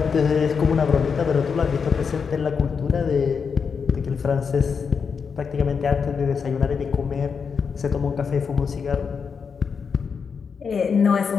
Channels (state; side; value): quieter; right; 6.0 dB